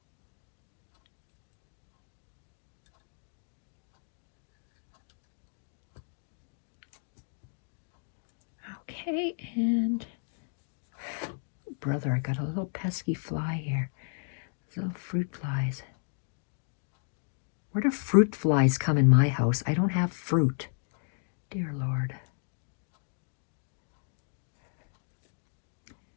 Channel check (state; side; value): silent; right; 56 dB below the other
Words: Okay, and brother, I got a little pesky fly here. Little fruit flies. Where do fruit flies come in my house? I don't have fruit. Dear Lord.